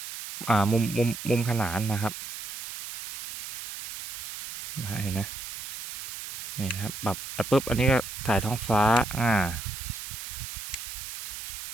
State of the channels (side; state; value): right; noise; hiss, 8 dB below the sound